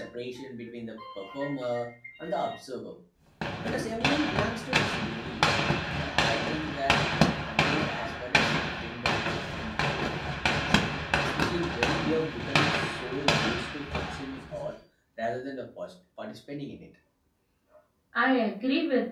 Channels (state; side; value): identical; both; correlation 1.00